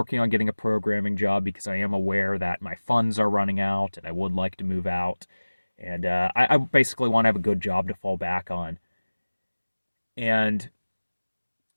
on getting a programming job because I am aware that my funds are running out and I would like to move out. And I basically want to have a good job to fall back on. And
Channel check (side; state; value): both; inverted; correlation -1.00